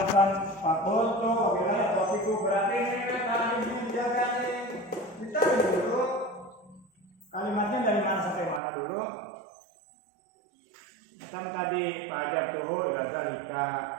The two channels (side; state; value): left; drops out; at 8.6 s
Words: fakultu wabillahi atau fiqhu berarti ini kan harus dijaga nih. Kita dulu kalimatnya dari mana sampai mana dulu? Macam tadi fajar tuh zalika